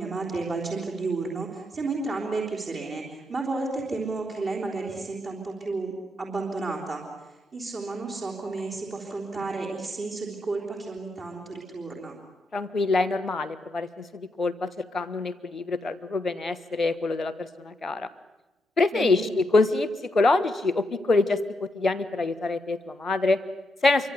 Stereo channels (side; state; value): both; normal; correlation 0.81